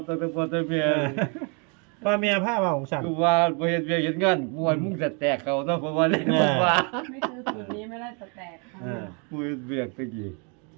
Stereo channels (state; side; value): quieter; left; 35.7 dB